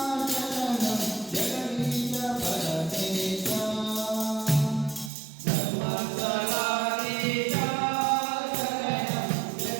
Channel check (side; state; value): left; drops out; at 5.1 s